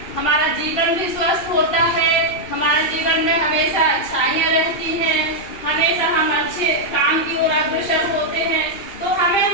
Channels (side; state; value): right; late; 2.7 ms